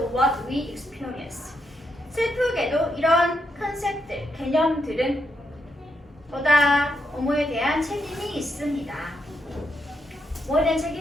what we experience. 슬프게도 이런 컨셉들, 개념들은 보다 뭐뭐에 대한 책임이 있습니다. 뭐에 대한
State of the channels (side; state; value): both; normal; correlation 0.80